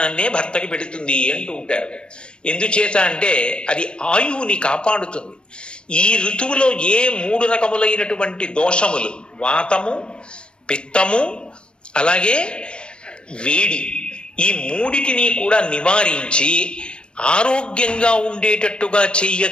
భర్తకి పెడుతుంది అంటూ ఉంటారు. ఎందుచేత అంటే అది ఆయువుని కాపాడుతుంది. ఈ ఋతువులో ఏ 3 రకములైనటువంటి దోషములు, వాతము, పిత్తము, అలాగే వేడి, ఈ 3టిని కూడా నివారించి ఆరోగ్యంగా ఉండేటట్టుగా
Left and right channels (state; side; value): late; right; 0.052 ms